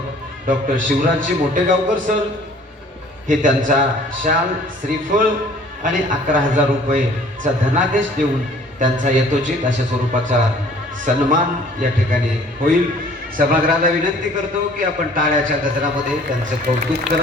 डॉक्टर शिवराजजी मोठेगावकर सर हे त्यांचा शाल, श्रीफळ आणि 11,000 रुपयेचा धनादेश देऊन त्यांचा यथोचित अशा स्वरूपाचा सन्मान या ठिकाणी होईल। सभागृहाला विनंती करतो की आपण टाळ्याच्या गजरामध्ये त्यांचं कौतुक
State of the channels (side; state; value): both; normal; correlation 0.53